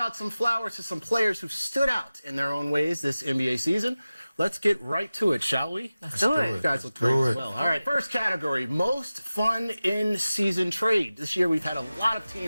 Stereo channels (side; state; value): both; inverted; correlation -0.96